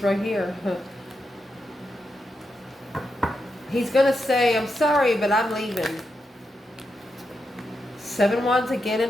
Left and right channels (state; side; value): normal; both; correlation 0.85